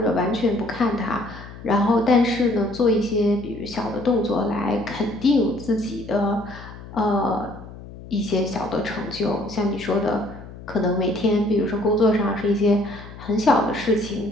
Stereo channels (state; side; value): noise; left; hum, 15 dB below the sound